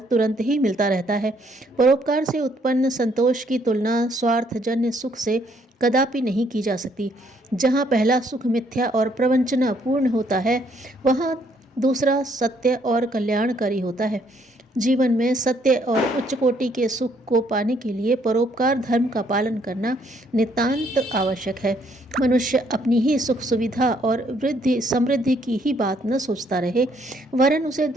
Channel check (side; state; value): both; normal; correlation 0.68